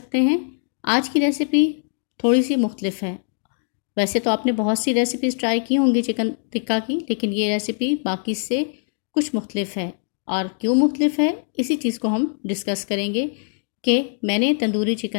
हैं। आज की रेसिपी थोड़ी सी मुख्तलिफ है। वैसे तो आपने बहुत सी रेसिपीज़ ट्राई की होंगी चिकन टिक्का की, लेकिन ये रेसिपी बाकी से कुछ मुख्तलिफ है। और क्यों मुख्तलिफ है, इसी चीज़ को हम डिस्कस करेंगे कि मैंने तंदूरी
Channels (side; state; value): right; silent; 64 dB below the other